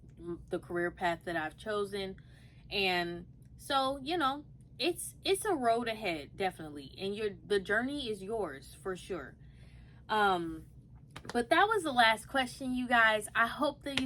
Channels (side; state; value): both; identical; correlation 1.00